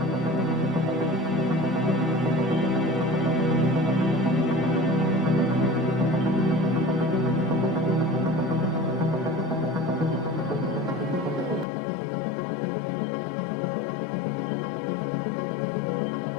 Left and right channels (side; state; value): right; drops out; at 11.7 s